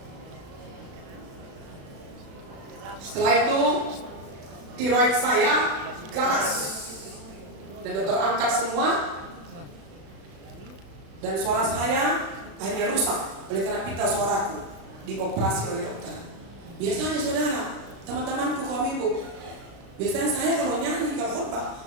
Setelah itu tiroid saya ganas dan dokter angkat semua, dan suara saya akhirnya rusak oleh karena pita suaraku dioperasi oleh dokter. Biasanya saudara, teman-temanku kaum ibu, biasanya saya kalau nyanyi, kalau khotbah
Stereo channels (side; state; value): left; late; 36 ms